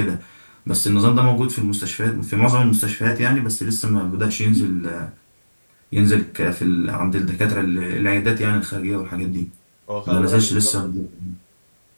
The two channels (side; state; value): both; inverted; correlation -1.00